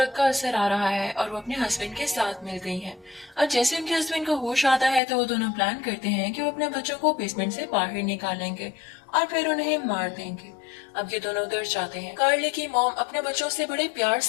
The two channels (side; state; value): right; drops out; at 5.0 s